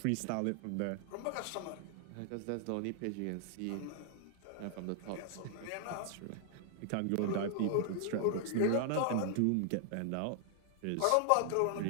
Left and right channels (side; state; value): both; different; correlation 0.00